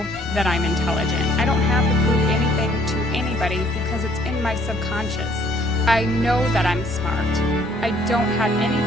that I'm intelligent. I don't have to prove anything to anybody because it's in my subconscious. I know that I'm smart. I don't have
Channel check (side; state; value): both; normal; correlation 0.61